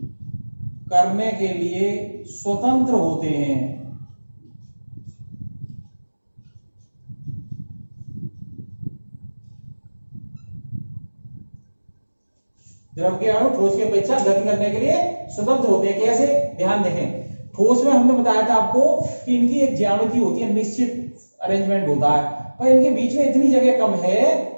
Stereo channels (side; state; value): both; inverted; correlation -1.00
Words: करने के लिए स्वतंत्र होते हैं। द्रव के अणु ठोस की अपेक्षा गति करने के लिए स्वतंत्र होते हैं। कैसे, ध्यान देखें, ठोस में हमने बताया था आपको कि इनकी एक ज्यामिति होती है, निश्चित अरेंजमेंट होता है, पर इनके बीच में इतनी जगह कम है